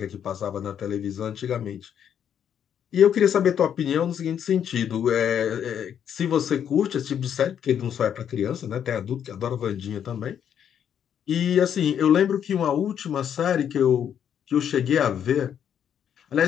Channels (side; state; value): right; quieter; 8.9 dB